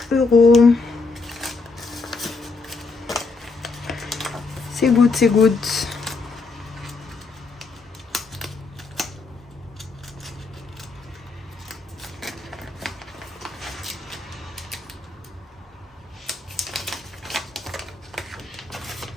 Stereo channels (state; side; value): quieter; right; 3.9 dB